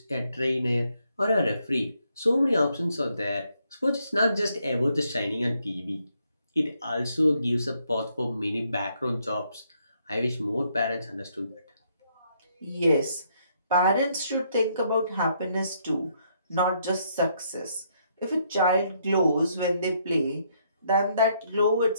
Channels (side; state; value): both; inverted; correlation -0.73